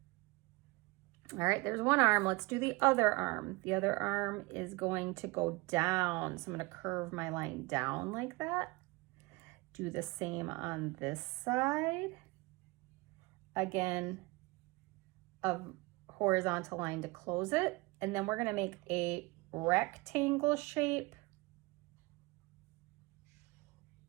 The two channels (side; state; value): left; quieter; 24.1 dB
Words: All right, there's one arm. Let's do the other arm. The other arm is going to go down. So I'm going to curve my line down like that. Do the same on this side. Again, a horizontal line to close it. And then we're going to make a rectangle shape